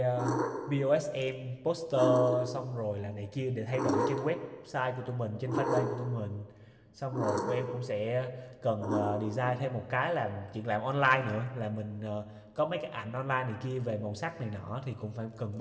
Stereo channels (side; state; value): both; identical; correlation 1.00